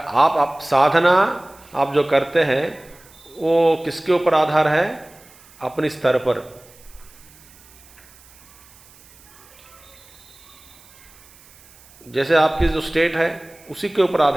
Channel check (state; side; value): noise; right; hiss, 25 dB below the sound